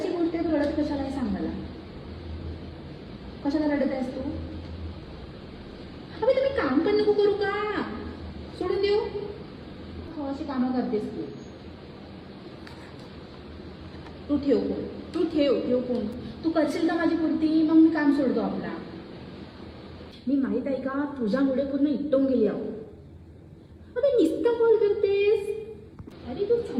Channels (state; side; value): identical; both; correlation 1.00